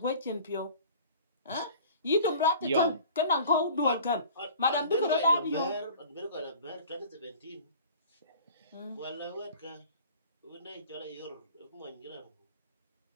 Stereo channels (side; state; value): both; inverted; correlation -0.44